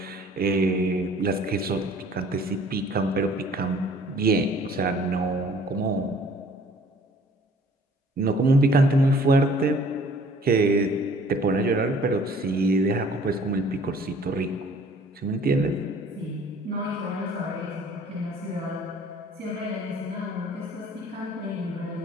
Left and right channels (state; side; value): normal; both; correlation 0.54